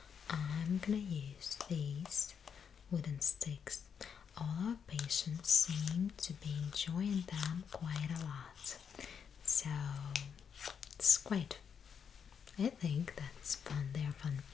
I'm gonna use these wooden sticks. All our patients seem to be enjoying them quite a lot, so it's quite, I think that's fun. They're fun.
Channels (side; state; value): right; quieter; 7.1 dB